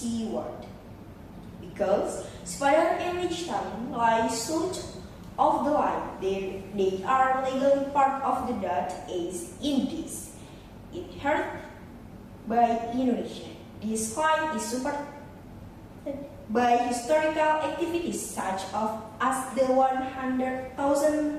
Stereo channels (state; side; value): identical; both; correlation 1.00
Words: Because Sipadan and Lichutan lie south of the line, they are legally part of the Dutch East Indies, inherited by Indonesia. This line is supported by historical activities such as the